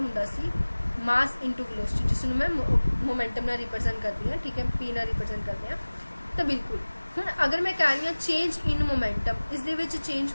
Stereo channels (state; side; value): inverted; both; correlation -1.00